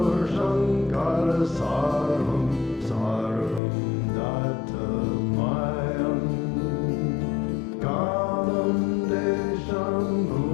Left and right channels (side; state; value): right; drops out; at 3.6 s